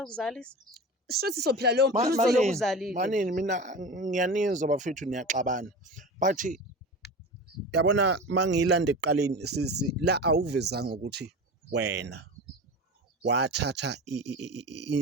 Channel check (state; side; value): normal; both; correlation 0.31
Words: ukuzalisa shuthi sophila leyo mpilo lokuzalile manini mina ngiyanizwa bafethu niyaxabana but yabona mangiyilanda ekuqaleni sisi la awuvezanga ukuthi wena wathatha